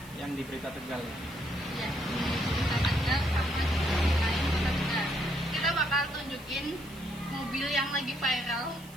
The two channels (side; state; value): right; noise; hiss, 21 dB below the sound